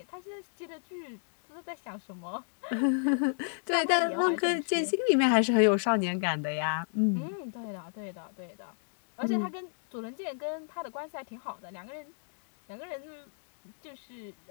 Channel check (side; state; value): right; silent; digital silence